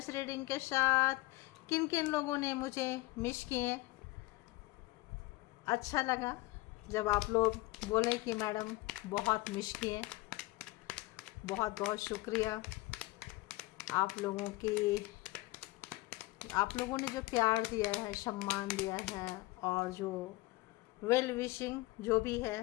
रीडिंग के साथ। किन किन लोगों ने मुझे मिस किए, अच्छा लगा जब आप लोग बोले कि मैडम बहुत मिस किए। बहुत बहुत शुक्रिया आप लोगों ने जो प्यार दिया है, सम्मान दिया है और जो वेल विशिंग जो भी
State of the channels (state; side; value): quieter; right; 20.4 dB